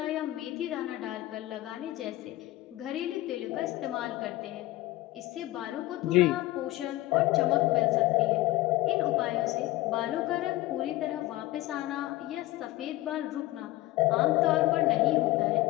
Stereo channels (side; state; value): right; quieter; 17.8 dB